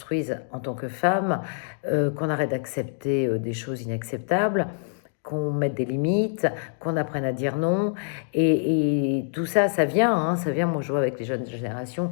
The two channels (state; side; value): silent; right; digital silence